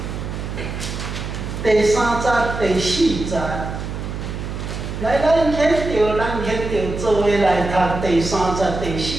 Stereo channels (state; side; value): noise; right; hum, 6 dB below the sound